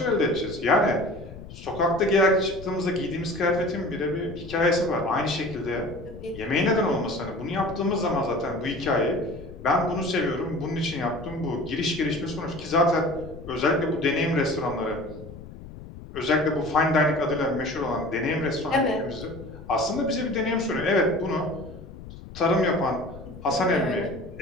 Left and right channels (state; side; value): noise; left; rumble, 15 dB below the sound